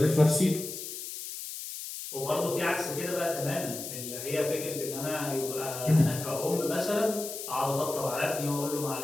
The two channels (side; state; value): left; noise; hiss, 8 dB below the sound